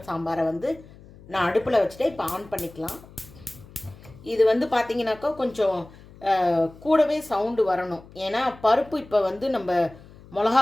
சாம்பாரை வந்து நான் அடுப்பில் வச்சுட்டு இப்போ ஆன் பண்ணிக்கலாம். இது வந்து பார்த்திங்கனாக்கா கொஞ்சம் கூடவே சவுண்டு வரணும். ஏன்னா பருப்பு இப்போ வந்து நம்ம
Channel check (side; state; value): left; noise; hum, 21 dB below the sound